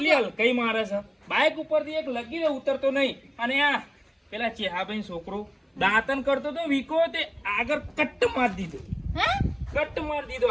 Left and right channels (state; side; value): identical; both; correlation 1.00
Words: હલકાઈ મારે છે. બાઈક ઉપરથી એક લગીને ઉતરતો નહીં. અને આ પેલા ચેહાભાઈ છોકરો દાંતન કરતો તો વીકો તે આગળ કટ્ટ મારી દીધો. હે કટ્ટ મારી દીધો